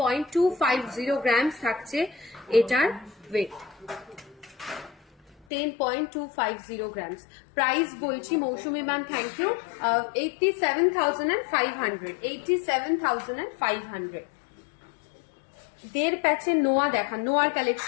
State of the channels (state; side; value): drops out; right; at 5.5 s